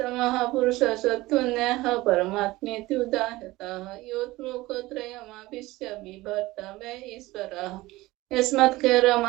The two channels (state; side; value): quieter; left; 19.1 dB